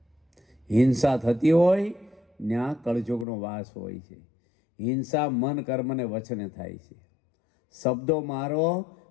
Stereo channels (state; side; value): drops out; right; at 3.2 s